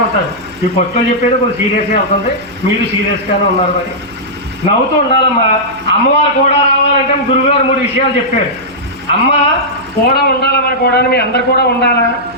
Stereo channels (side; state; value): right; noise; hum, 25 dB below the sound